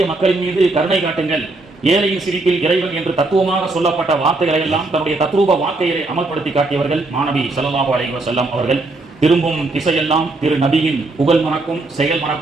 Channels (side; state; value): left; quieter; 3.1 dB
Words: மக்களின் மீது கருணை காட்டுங்கள், ஏழையின் சிரிப்பில் இறைவன் என்று தத்துவமாக சொல்லப்பட்ட வார்த்தைகளை எல்லாம் தன்னுடைய தத்ரூப வாழ்க்கையை அமல்படுத்தி காட்டியவர்கள் மாநபி ஸல்லல்லாஹு அலைஹி வஸல்லம் அவர்கள். திரும்பும் திசையெல்லாம் திரு நபியின் புகழ் மணக்கும் செயல்